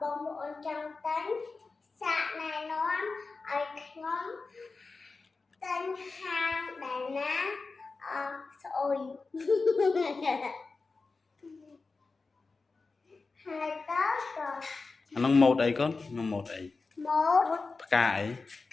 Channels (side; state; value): right; quieter; 4.0 dB